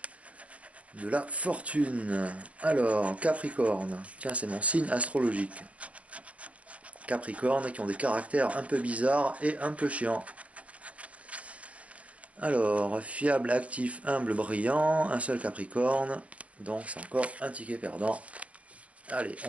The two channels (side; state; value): left; late; 0.065 ms